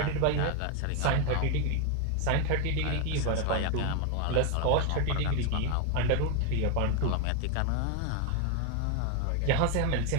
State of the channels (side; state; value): both; different; correlation 0.01